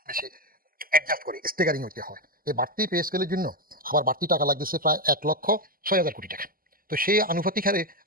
বেশি অ্যাডজাস্ট করে স্টেগারিং হইতে হয়। এই বাড়তি পে স্কেলের জন্য আবার বাড়তি টাকা লাগতেছে প্রায় 1,06,000 কোটি টাকা। তো সেই আনুপাতিক হারে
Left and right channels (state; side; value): late; left; 0.42 ms